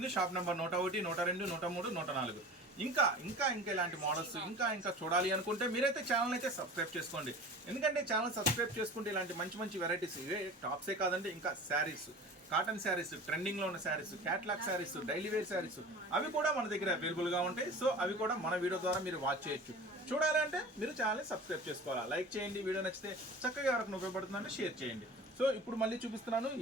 Shop number 101, 102, 103, 104. ఇంకా ఇలాంటి మోడల్స్ ఇంకా చూడాలి అనుకుంటే మీరైతే ఛానల్ అయితే సబ్స్క్రైబ్ చేసుకోండి. ఎందుకంటే ఛానల్ సబ్స్క్రైబ్ చేసుకుంటే ఇలాంటి మంచి వెరైటీస్, ఇవే టాప్సే కాదండి, ఇంకా శారీస్, కాటన్ శారీస్, ట్రెండింగ్ లో ఉన్న saris, catalogue saris, daily wear saris అవి కూడా మన దగ్గర అవైలబుల్ గా ఉంటాయి. సో అవి కూడా మన వీడియో ద్వారా మీరు వాచ్ చేయొచ్చు. చూడాలి అంటే మీరు ఛానల్ని సబ్స్క్రైబ్ చేసుకోవాలా. లైక్ చేయండి, వీడియో నచ్చితే చక్కగా ఎవరికి ఉపయోగపడుతుందంటే షేర్ చేయండి. సో ఇప్పుడు మళ్ళీ చూపిస్తున్నాను.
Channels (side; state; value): both; normal; correlation 0.39